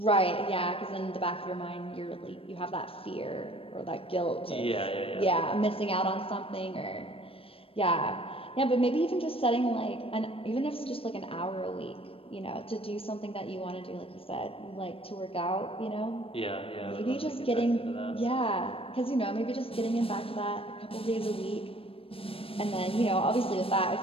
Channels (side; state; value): right; late; 0.27 ms